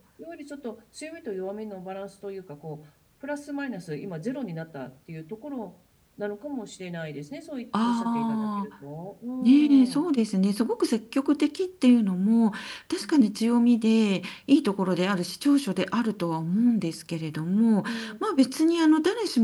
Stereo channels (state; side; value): identical; both; correlation 1.00